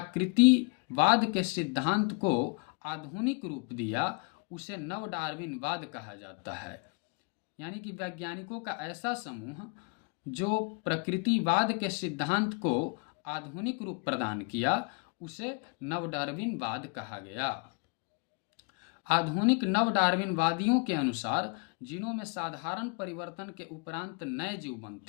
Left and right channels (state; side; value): quieter; right; 31.9 dB